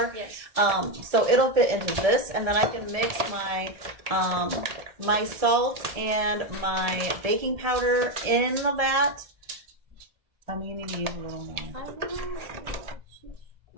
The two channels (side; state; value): left; late; 1.7 ms